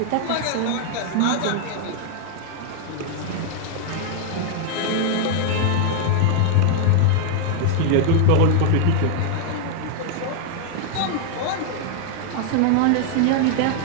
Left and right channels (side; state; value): both; different; correlation 0.00